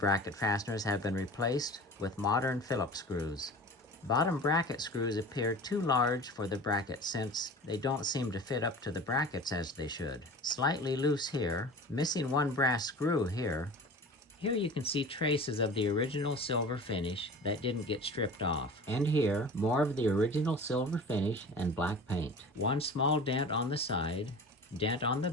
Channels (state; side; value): normal; both; correlation 0.38